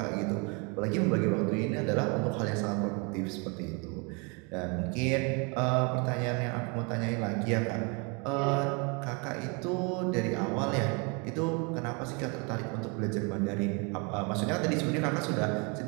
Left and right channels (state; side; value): quieter; left; 32.3 dB